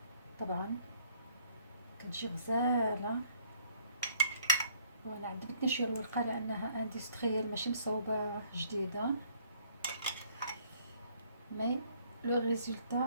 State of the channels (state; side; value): inverted; both; correlation -0.61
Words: طبعا كتجي غزالة. وانا عجبتني شويه الورقه لانها اندستريال ماشي مصوبه جديده. مي لو